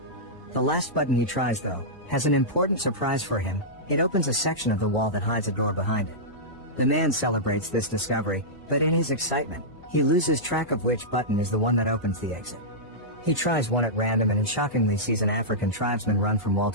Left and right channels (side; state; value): right; late; 1.0 ms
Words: The last button he tries, though, has an important surprise for him. It opens a section of the wall that hides a door behind it. The man celebrates this discovery, but in his excitement, he loses track of which button is the one that opens the exit. He tries one at random and shockingly sees an African tribesman run from wall